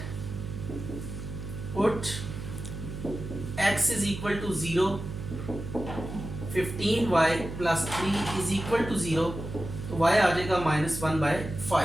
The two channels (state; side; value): noise; right; hum, 8 dB below the sound